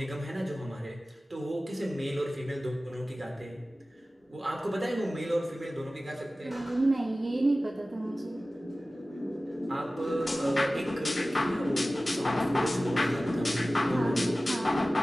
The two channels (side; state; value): both; normal; correlation 0.96